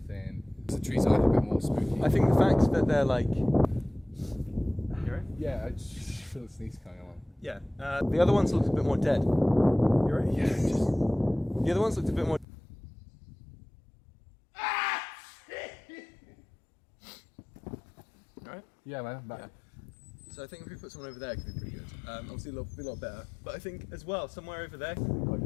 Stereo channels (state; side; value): drops out; right; at 12.5 s